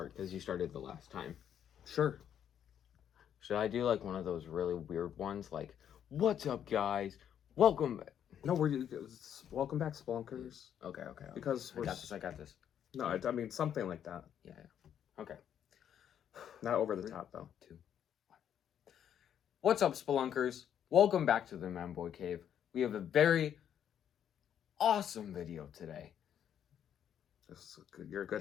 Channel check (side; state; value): right; quieter; 9.4 dB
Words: because you started the last time. Sure. Should I do like one of those really weird ones, like "What's up, guys? Welcome." No, welcome back, Spelunkers. Okay. Because I got this. No, I mean something like that. Yeah. Okay. Not over the top though. 2, 1. What's up, Spelunkers? Welcome back to the Manboy Cave. We have a very awesome video today. You're a good